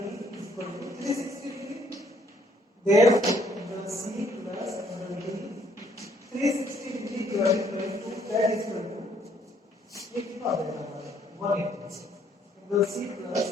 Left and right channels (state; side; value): normal; both; correlation 0.65